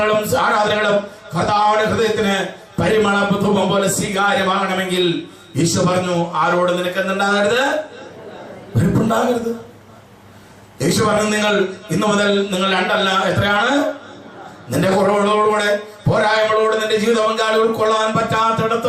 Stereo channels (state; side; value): identical; both; correlation 1.00